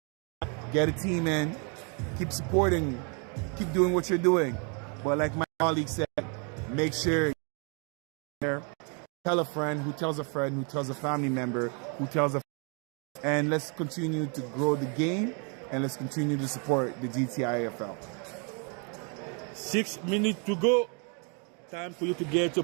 get a team in, keep supporting, keep doing what you're doing. But like my colleague said, make sure you're there. Tell a friend who tells a friend who tells a family member who tells a friend. And let's continue to grow the game, and let's continue to support the GTIFL. 6 minutes to go. Time for you to get your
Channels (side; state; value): left; quieter; 36.6 dB